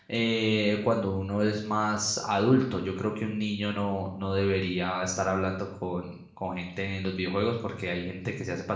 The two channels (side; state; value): both; identical; correlation 1.00